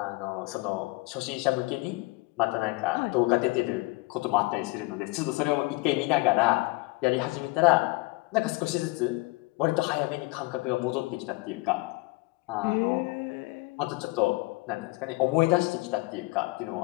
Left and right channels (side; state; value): right; quieter; 23.3 dB